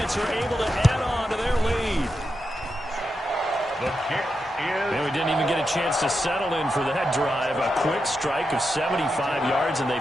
are able to add on to their lead. The kick is... And we didn't even get a chance to settle in for that drive. A quick strike of 75 yards, and they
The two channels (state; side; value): normal; both; correlation 0.87